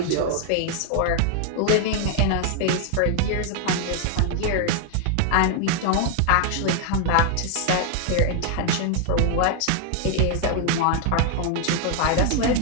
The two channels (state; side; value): different; both; correlation 0.00